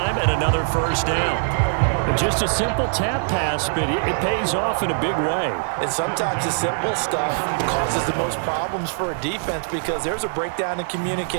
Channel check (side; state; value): left; silent; digital silence